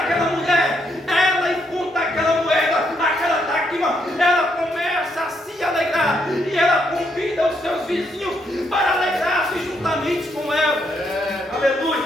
mulher, ela encontra aquela moeda, aquela dracma, ela começa a se alegrar. E ela convida os seus vizinhos para alegrar-se juntamente com ela.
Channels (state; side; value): normal; both; correlation 0.75